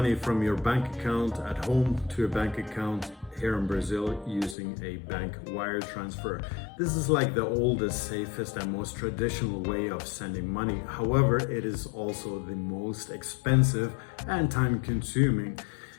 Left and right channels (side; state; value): right; drops out; at 4.5 s